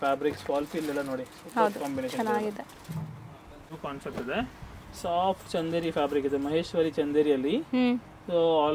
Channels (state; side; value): identical; both; correlation 1.00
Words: ಫ್ಯಾಬ್ರಿಕ್ಸ್ ಫಾಲ್ ಫೀಲ್ ಎಲ್ಲ ನೋಡಿ, ಸೂಪರ್ ಕಾಂಬಿನೇಷನ್ ಇದೆ. ನ್ಯೂ ಕಾನ್ಸೆಪ್ಟ್ ಇದೆ, ಸಾಫ್ಟ್ ಚಂದೇರಿ ಫ್ಯಾಬ್ರಿಕ್ ಇದೆ, ಮಹೇಶ್ವರಿ ಚಂದೇರಿಯಲ್ಲಿ. So